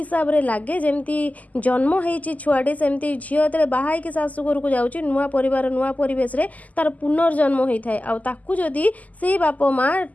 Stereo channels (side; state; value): right; late; 0.076 ms